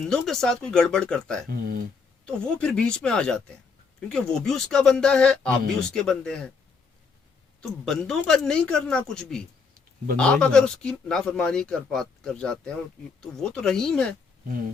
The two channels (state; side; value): quieter; right; 5.0 dB